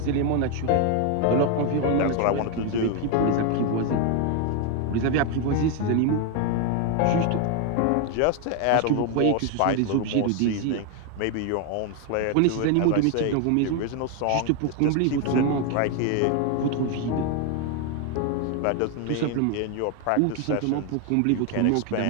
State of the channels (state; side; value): different; both; correlation 0.01